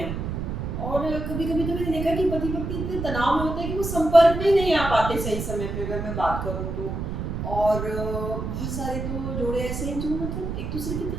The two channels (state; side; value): noise; right; rumble, 4 dB below the sound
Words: और कभी कभी तो मैंने देखा कि पति पत्नी इतने तनाव में होते हैं कि वो संपर्क में ही नहीं आ पाते सही समय पे, अगर मैं बात करूँ तो। और बहुत सारे तो जोड़े ऐसे हैं जो मतलब एक दूसरे की